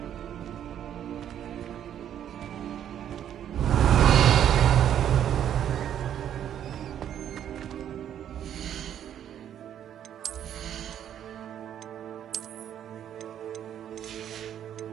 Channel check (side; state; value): left; quieter; 10.0 dB